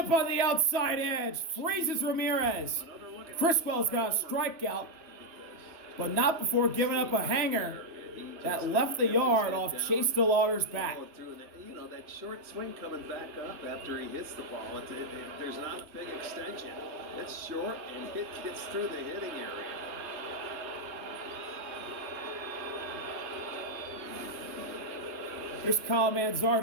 on the outside edge. Freezes Ramirez. Criswell's got a strikeout, but not before giving up a hanger that left the yard off Chase DeLauter's bat. You know, that short swing coming back up after he hits the ball, there's not a big extension. It's short and it gets through the hitting area. Here's Kyle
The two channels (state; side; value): late; left; 3.0 ms